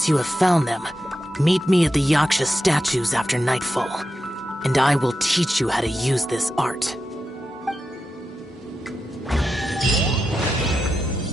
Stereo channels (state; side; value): normal; both; correlation 0.89